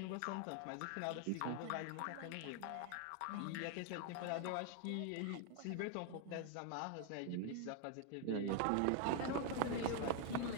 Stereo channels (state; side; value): different; both; correlation 0.01